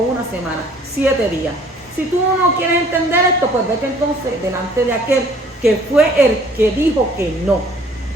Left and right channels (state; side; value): normal; both; correlation 0.56